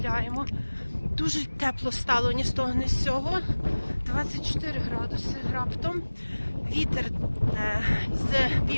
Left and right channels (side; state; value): both; inverted; correlation -1.00